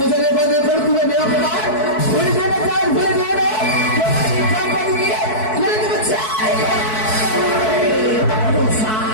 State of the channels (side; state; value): right; late; 4.6 ms